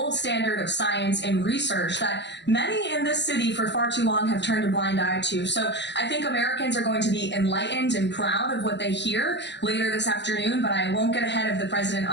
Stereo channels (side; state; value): right; late; 0.51 ms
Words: standard of science and research that many in this city for far too long have turned a blind eye to. So I think Americans are going to be enlightened and proud of what they hear later this afternoon, but I won't get ahead of the president